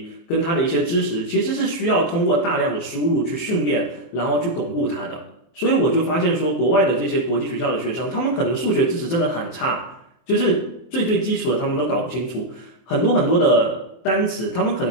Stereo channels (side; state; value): right; late; 23 ms